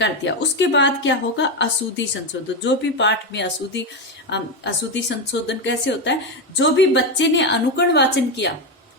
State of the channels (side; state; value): both; normal; correlation 0.11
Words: दिया। उसके बाद क्या होगा, अशुद्धि संशोधन। जो भी पाठ में अशुद्धि संशोधन कैसे होता है, जो भी बच्चे ने अनुकरण वाचन किया,